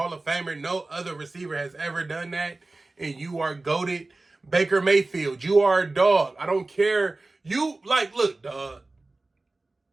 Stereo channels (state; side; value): quieter; left; 3.1 dB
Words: of Famer. No other receiver has ever done that. And you are goated. Baker Mayfield, you are a dog. I don't care. Look, dog.